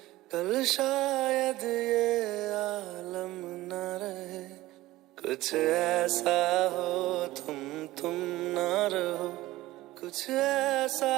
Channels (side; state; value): left; quieter; 17.4 dB